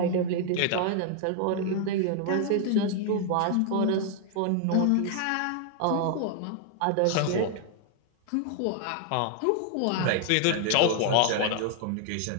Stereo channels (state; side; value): different; both; correlation 0.00